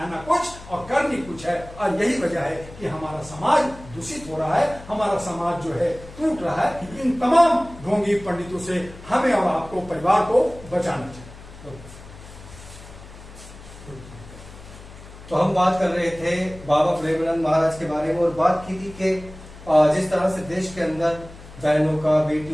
कुछ और करनी कुछ है। और यही वजह है कि हमारा समाज दूषित हो रहा है, हमारा समाज जो है टूट रहा है। इन तमाम ढोंगी पंडितों से हमें और आपको, परिवार को बचाना चाहिए। तो हम बात कर रहे थे बाबा प्रेमानंद महाराज के बारे में और बात की थी कि जिस तरह से देश के अंदर बहनों का,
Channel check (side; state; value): left; noise; hum, 17 dB below the sound